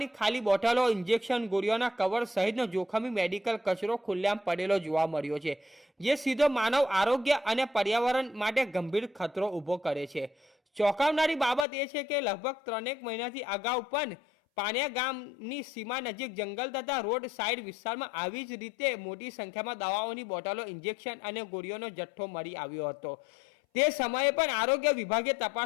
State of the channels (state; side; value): drops out; right; at 11.7 s